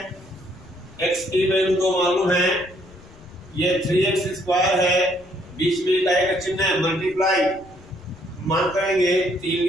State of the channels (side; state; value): left; noise; rumble, 23 dB below the sound